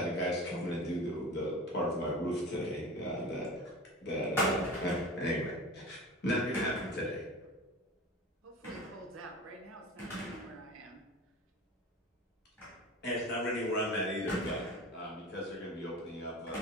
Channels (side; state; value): both; normal; correlation 0.35